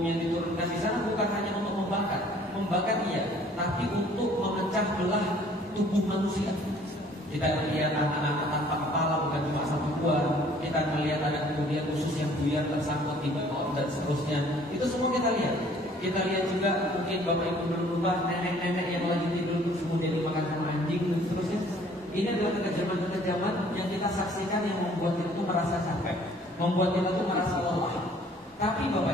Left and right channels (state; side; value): normal; both; correlation 0.56